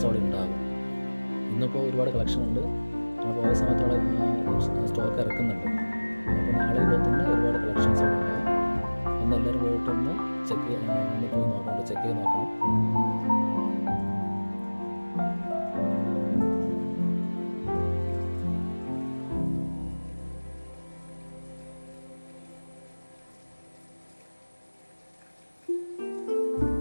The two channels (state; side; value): inverted; both; correlation -1.00